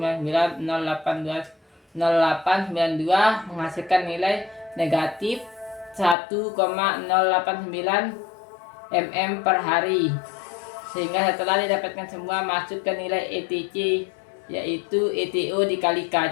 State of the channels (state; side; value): drops out; right; at 6.2 s